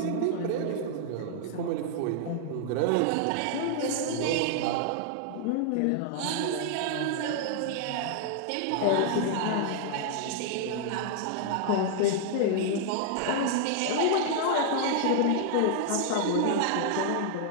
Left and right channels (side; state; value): both; different; correlation 0.00